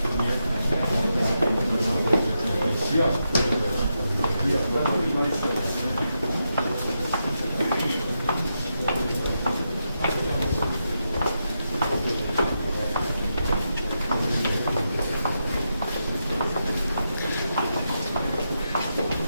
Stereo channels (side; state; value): both; inverted; correlation -0.85